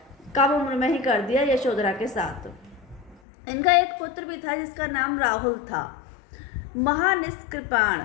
कम उम्र में ही कर दिया यशोधरा के साथ। इनका एक पुत्र भी था जिसका नाम राहुल था।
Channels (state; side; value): drops out; right; at 3.2 s